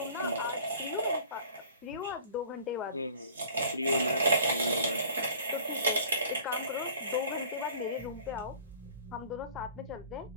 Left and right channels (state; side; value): inverted; both; correlation -0.48